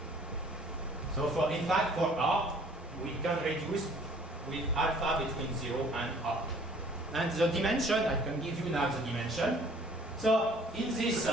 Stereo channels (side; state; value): both; normal; correlation 0.55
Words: So in fact, for R, we can reduce with alpha between 0 and R. And the dimension, I can give you now the dimension. So in this